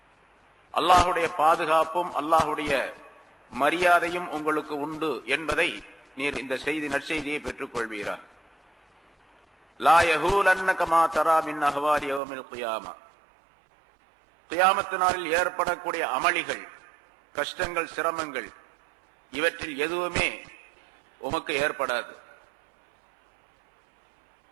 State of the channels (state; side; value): drops out; left; at 12.2 s